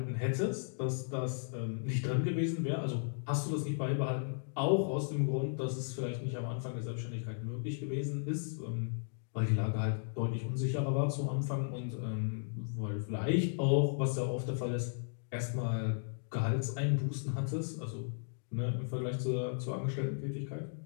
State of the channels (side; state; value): right; silent; digital silence